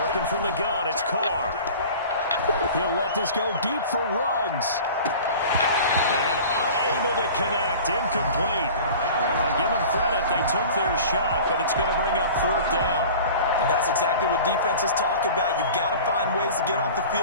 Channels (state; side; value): inverted; both; correlation -0.41